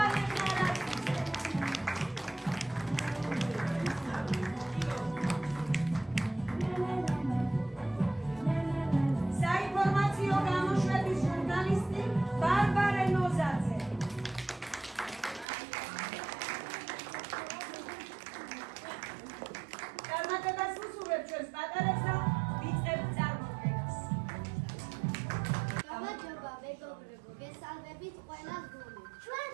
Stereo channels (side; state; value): left; drops out; at 15.5 s